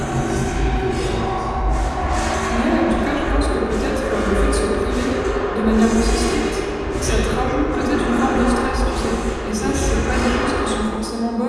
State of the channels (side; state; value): both; identical; correlation 1.00